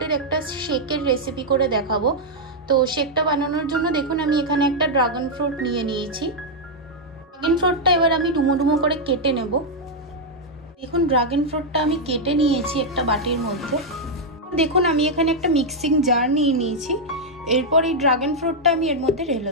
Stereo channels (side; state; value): both; normal; correlation -0.02